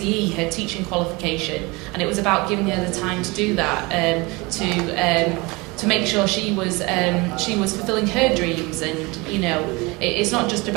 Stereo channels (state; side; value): quieter; left; 25.0 dB